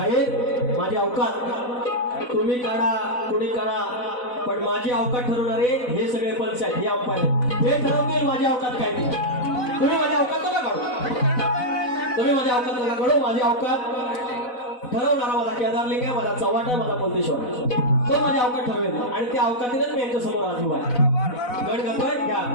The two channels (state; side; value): late; right; 4.0 ms